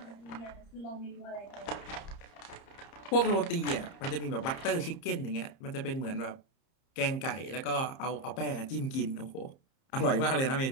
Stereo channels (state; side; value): late; right; 30 ms